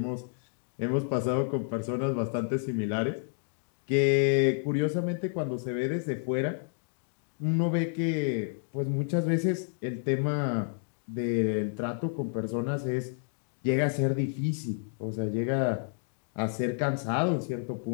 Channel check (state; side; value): silent; right; digital silence